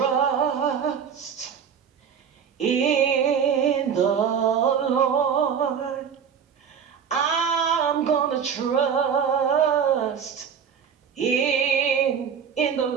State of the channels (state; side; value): quieter; left; 7.3 dB